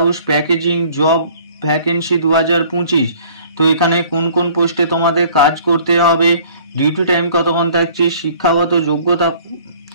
packaging job vacancy 2025। তো এখানে কোন কোন পোস্টে তোমাদের কাজ করতে হবে, ডিউটি টাইম কতক্ষণ থাকছে, শিক্ষাগত যোগ্যতা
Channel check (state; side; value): inverted; both; correlation -0.53